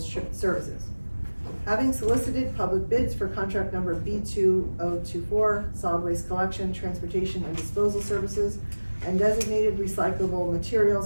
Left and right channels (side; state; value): both; inverted; correlation -1.00